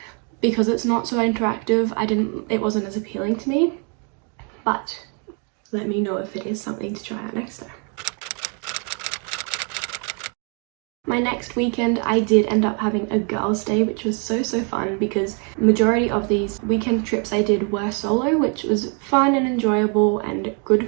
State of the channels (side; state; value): left; quieter; 38.3 dB